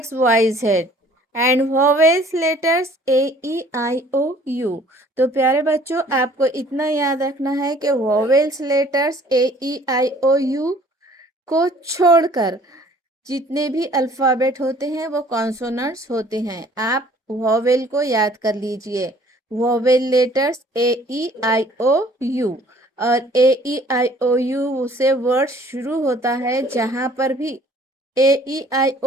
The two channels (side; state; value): both; normal; correlation 0.55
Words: Y Z and vowels letters A E I O U. तो प्यारे बच्चों आपको इतना याद रखना है कि vowels letters A E I O U को छोड़कर जितने भी अल्फ़ाबेट होते हैं वो कॉन्सोनेंट्स होते हैं। आप वोवेल को याद कर लीजिए। Vowel letters A E I O U, और A E I O you से वर्ड शुरू होता है। जहाँ पर भी ए ई आई